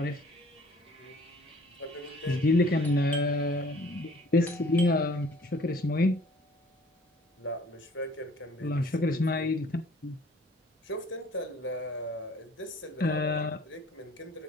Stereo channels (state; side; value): normal; both; correlation 0.54